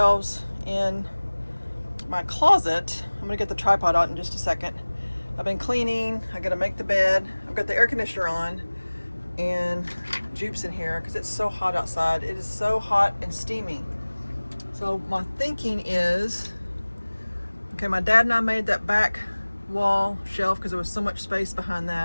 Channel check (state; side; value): inverted; both; correlation -1.00